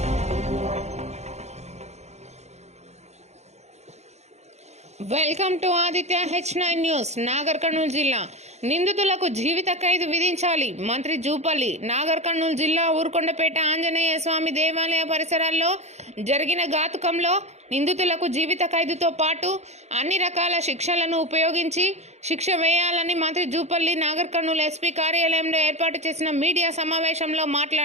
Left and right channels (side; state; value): left; late; 0.32 ms